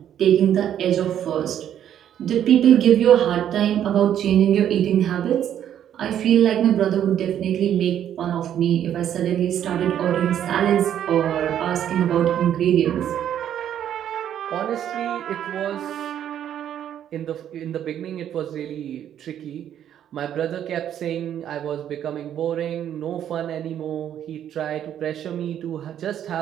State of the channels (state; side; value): quieter; left; 10.2 dB